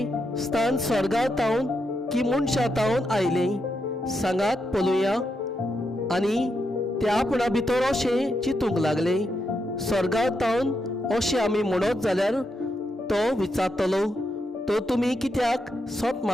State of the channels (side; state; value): both; normal; correlation 0.83